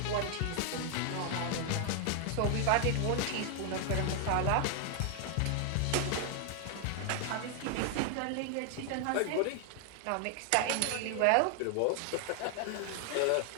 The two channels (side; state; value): both; different; correlation 0.00